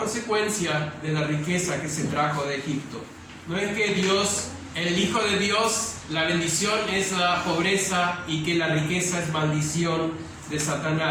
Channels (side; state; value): both; identical; correlation 1.00